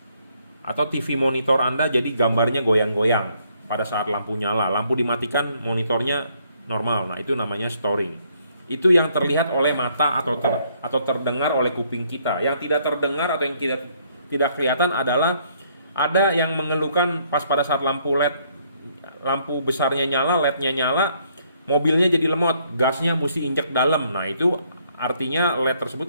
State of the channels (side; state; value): both; inverted; correlation -0.68